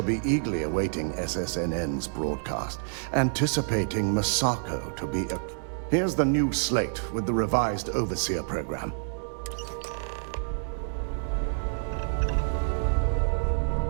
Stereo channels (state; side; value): silent; left; digital silence